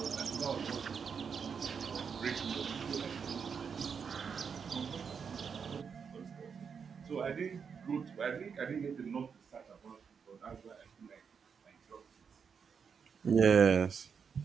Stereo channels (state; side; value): quieter; left; 6.4 dB